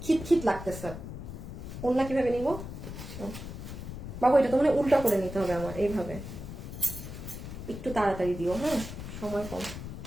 খিট লাগতেছে। অন্য কিভাবে নিব বাবু? এটা তো মানে উল্টা করে নিতে হবে আমার, এইভাবে। একটু তাড়াতাড়ি দিও, হ্যাঁ, সময় কম।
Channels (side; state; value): left; noise; rumble, 9 dB below the sound